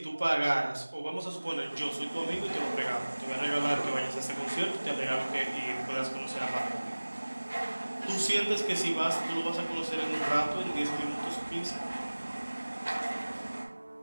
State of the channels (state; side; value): inverted; both; correlation -1.00